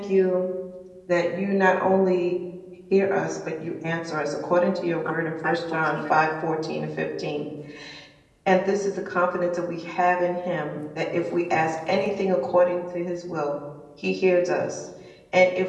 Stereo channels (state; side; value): identical; both; correlation 1.00